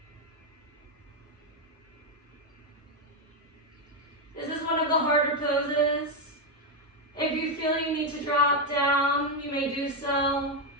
This is one of the harder poses. If you feel you need to drop down, you may do so.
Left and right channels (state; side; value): normal; both; correlation 0.05